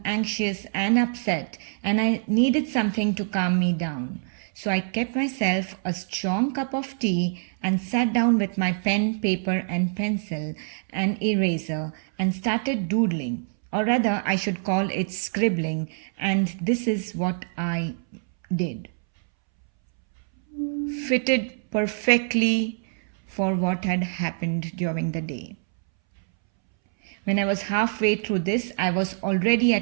anxious and upset, and I needed something to calm me down. So I kept myself a strong cup of tea and sat down with my pen, paper, and pencil and eraser and started doodling, or rather, I should call it scribbling, and this is what I did. Fitted perfectly for what had happened during the day. When I was halfway through this, I was already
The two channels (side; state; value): left; silent; 62 dB below the other